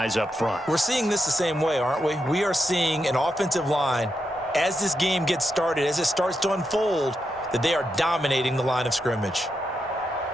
up front. We're seeing this the same way, aren't we? We are seeing an offensive line, as this game gets started, as it starts to unfold, that they are dominating the line of scrimmage.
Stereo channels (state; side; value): normal; both; correlation 0.85